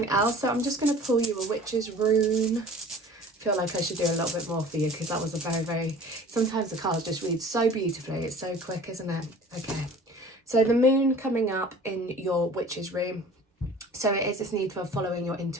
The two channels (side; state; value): both; normal; correlation 0.45